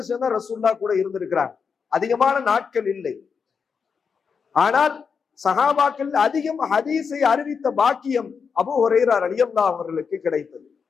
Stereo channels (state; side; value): quieter; right; 5.9 dB